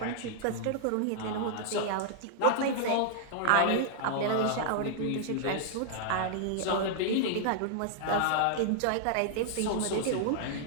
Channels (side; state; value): both; different; correlation -0.01